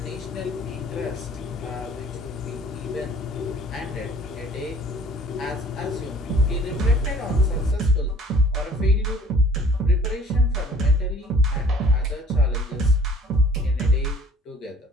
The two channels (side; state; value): both; normal; correlation 0.52